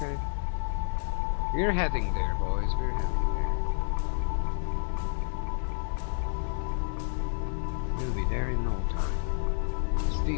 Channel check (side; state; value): right; silent; 58 dB below the other